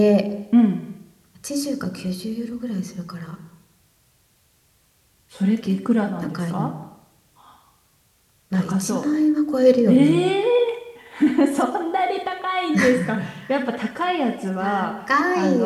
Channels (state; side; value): identical; both; correlation 1.00